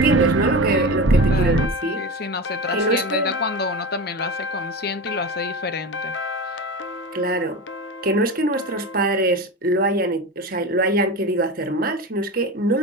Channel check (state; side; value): normal; both; correlation 0.26